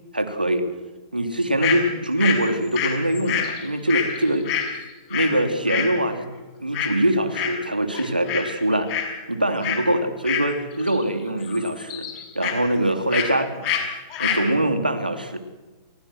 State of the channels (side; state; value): both; inverted; correlation -0.65